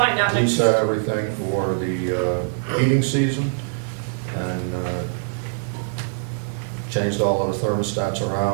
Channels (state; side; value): silent; left; 64 dB below the other